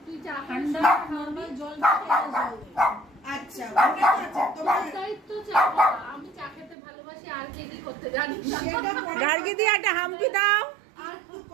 ঠান্ডা নরমাল জল আচ্ছা আমি চা খেতে ভালোবাসি আর কি করতে জানি গার্গি দিয়ে একটা হামকি দাও। আর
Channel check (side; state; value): left; drops out; at 6.8 s